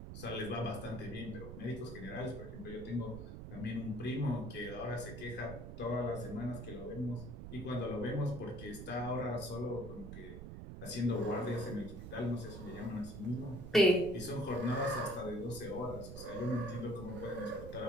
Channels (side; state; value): right; noise; rumble, 9 dB below the sound